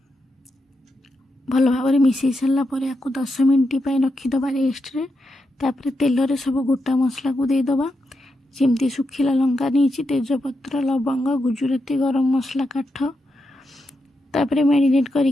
भल भाव मिसई सारा पर या 10 मिनट रखीदबा रेस्ट रे तापर तेल रे सब गोटा मसला को देदेबा जमती सुखिला लंका नहीं तेजपत्र लवंग गुजुराती गरम मसला काठ तापर मैरिनेट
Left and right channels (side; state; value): both; normal; correlation 0.85